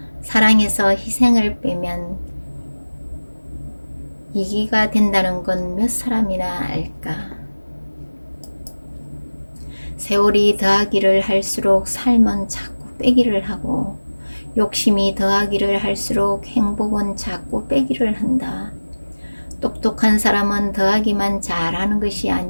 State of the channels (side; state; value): both; inverted; correlation -1.00